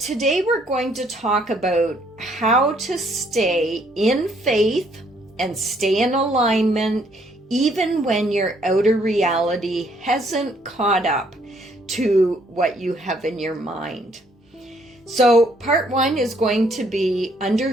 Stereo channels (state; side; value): normal; both; correlation 0.66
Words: we're going to talk about how to stay in faith and stay in alignment even when your outer reality hasn't caught up to what you have in your mind. So part one is going to be